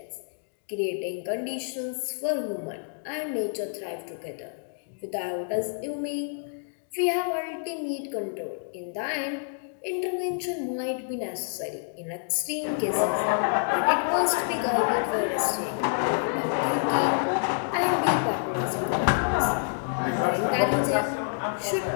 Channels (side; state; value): right; silent; digital silence